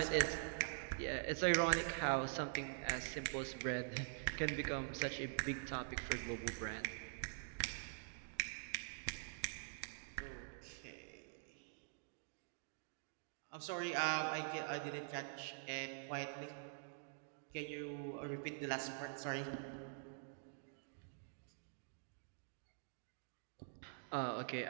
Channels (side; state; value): left; silent; digital silence